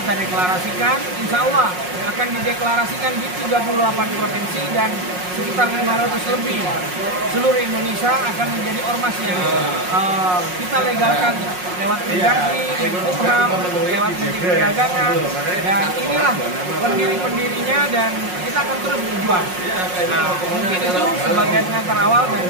deklarasikan, insya Allah akan dideklarasikan di 38 provinsi dan sekitar 500 lebih seluruh Indonesia akan menjadi ormas yang kita legalkan lewat Mendagri, Menkumham, lewat Menteri Perdagangan, dan inilah pendiri-pendirinya dan kita akan terus berjuang. Mungkin itu sebagai pengantar awal dan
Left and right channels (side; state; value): left; late; 5.5 ms